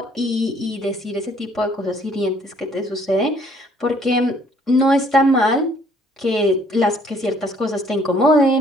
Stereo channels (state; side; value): normal; both; correlation 0.61